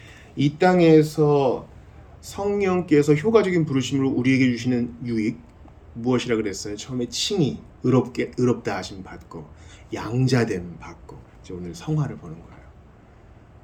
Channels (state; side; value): identical; both; correlation 1.00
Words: 이 땅에서 성령께서 효과적인 부르심으로 우리에게 주시는 유익 무엇이라 그랬어요? 처음에 칭의, 의롭다 하심 받고 양자됨 받고 이제 오늘 성화를 보는 거예요.